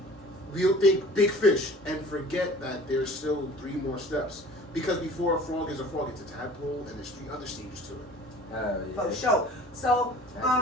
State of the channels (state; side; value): normal; both; correlation 0.46